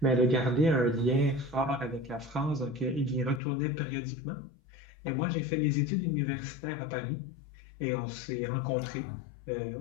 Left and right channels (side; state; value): right; drops out; at 3.4 s